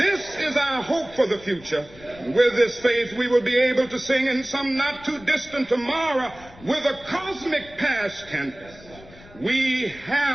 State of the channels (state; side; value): noise; left; rumble, 21 dB below the sound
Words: is our hope for the future. With this faith, we will be able to sing in some not too distant tomorrow with a cosmic past tense. We